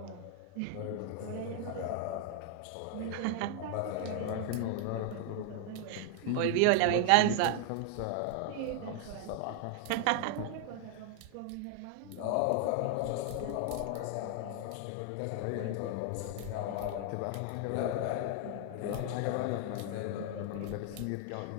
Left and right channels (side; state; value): both; different; correlation 0.00